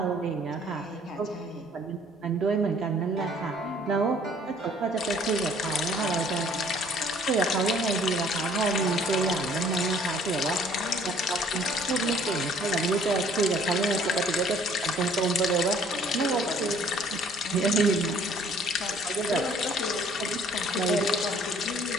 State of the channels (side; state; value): both; normal; correlation 0.57